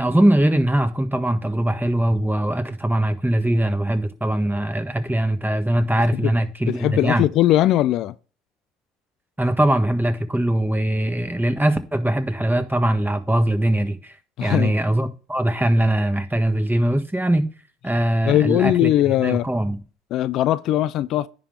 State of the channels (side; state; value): both; normal; correlation 0.81